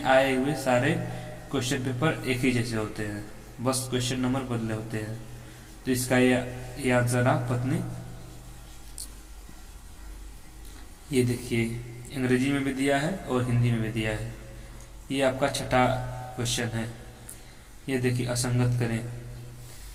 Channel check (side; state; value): both; identical; correlation 1.00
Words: आए हुए सारे क्वेश्चन पेपर एक ही जैसे होते हैं, बस क्वेश्चन नंबर बदले होते हैं। तो इसका ये आंसर रहा पत्नी। ये देखिए, अंग्रेजी में भी दिया है और हिंदी में भी दिया है। ये आपका 6वां क्वेश्चन है। ये देखिए, असंगत करें,